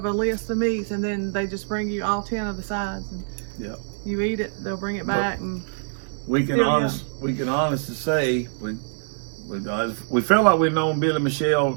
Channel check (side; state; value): left; silent; digital silence